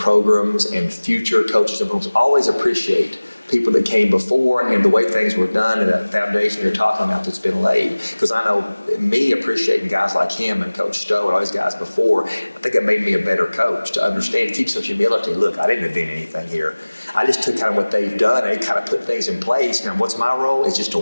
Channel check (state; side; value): inverted; both; correlation -1.00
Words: and future coaches and programs always appreciate people that came before and the way things were done and that foundation you're talking about that's been laid. Because I know me appreciating guys like him and Coach Stowe and all these guys before, I think it made me a better coach to understand, to keep some humility. Look, I didn't invent anything here. I just took kind of what they've done and kind of put things in place. Now, what's my role? Is just to